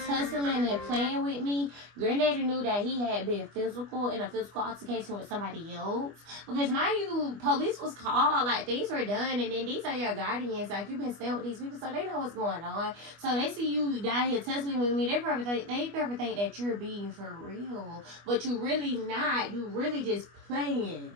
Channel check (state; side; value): late; left; 25 ms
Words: and playing with me. Granddaddy knew that he had been in a physical altercation with somebody else. Because mind you, police was called, like things were done, and then these are your guardians. Like you've been staying with these people, so they know what's going on. So they see you down here tussling with me. They probably think that you're being for real, but you really not. You really just playing.